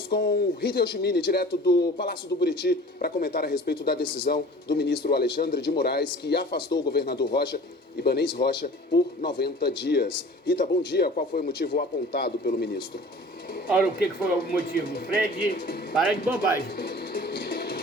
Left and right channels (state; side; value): normal; both; correlation 0.44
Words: com Rita Yoshimini, direto do Palácio do Buriti, para comentar a respeito da decisão do ministro Alexandre de Moraes, que afastou o governador Ibanez Rocha, por 90 dias. Rita, bom dia. Qual foi o motivo apontado pelo ministro? Olha, o que foi o motivo? Fred, para de bobagem.